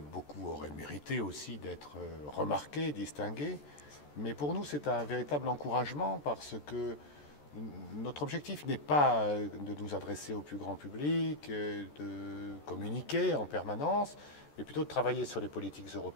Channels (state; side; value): late; right; 14 ms